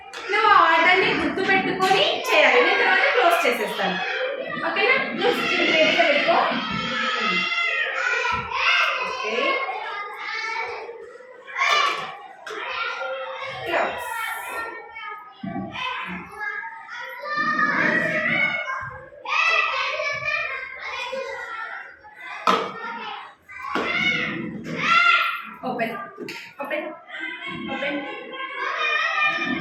నువ్వు ఆ ఆర్డర్ని గుర్తుపెట్టుకొని చేయాలి, నేను తర్వాత క్లోజ్ చేసేస్తాను. ఓకేనా? నువ్వు రెడీగా పెట్టుకో. Okay, close. Open, open, open.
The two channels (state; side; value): identical; both; correlation 1.00